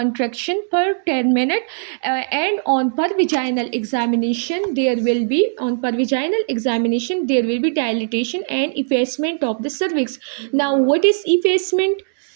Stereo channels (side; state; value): left; silent; digital silence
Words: per 10 minutes, and on per vaginal examination there will be dilatation and effacement of the cervix. Now, what is effacement?